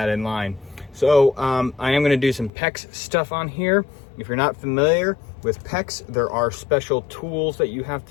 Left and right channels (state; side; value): drops out; right; at 2.5 s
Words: in line. So I am going to do some PEX stuff on here. If you're not familiar with PEX, there are special tools that you have